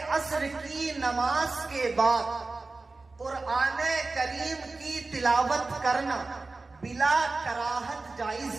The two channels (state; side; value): quieter; left; 3.6 dB